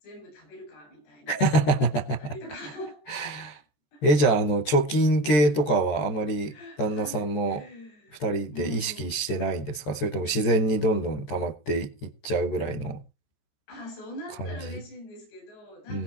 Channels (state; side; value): late; right; 14 ms